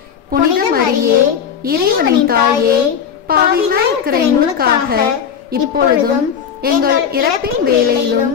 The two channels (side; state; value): right; quieter; 7.7 dB